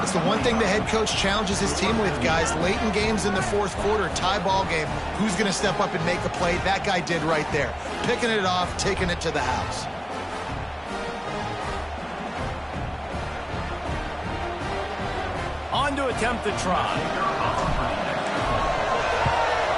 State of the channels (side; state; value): both; identical; correlation 1.00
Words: It's the one thing the head coach challenges his team with, guys. Late in games in the 4th quarter, tie ball game. Who's going to step up and make a play? That guy did right there. Picking it off, taking it to the house. On to attempt the try.